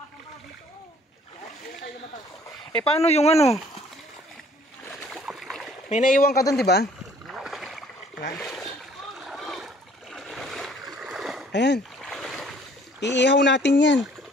Eh paano yung ano? May naiwan ka doon, di ba? Ayan. Iihaw natin yan.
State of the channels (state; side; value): normal; both; correlation 0.57